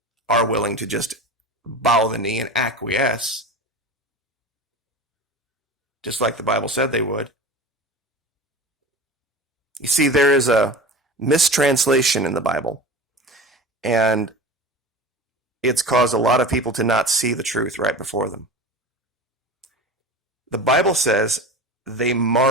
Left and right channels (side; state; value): both; normal; correlation 0.32